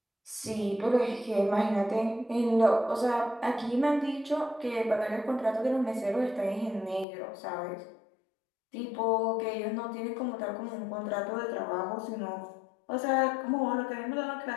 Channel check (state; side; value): drops out; right; at 7.1 s